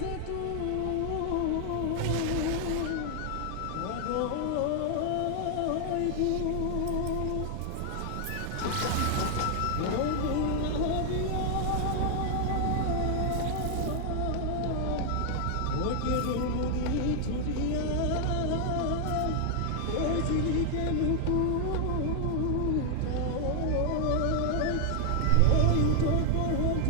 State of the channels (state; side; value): different; both; correlation 0.00